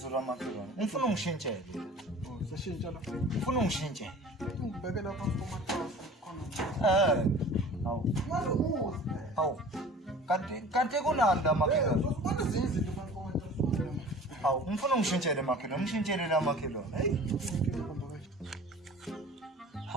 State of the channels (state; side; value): normal; both; correlation 0.43